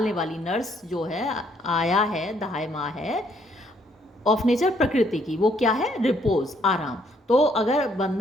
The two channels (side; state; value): both; normal; correlation 0.68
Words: वाली, नर्स जो है, आया है, दहाई माँ है, ऑफ नेचर प्रकृति की, वो क्या है, रिपोज, आराम। तो अगर